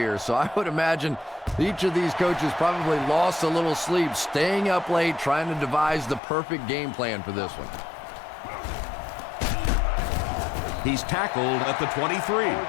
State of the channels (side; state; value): right; drops out; at 6.2 s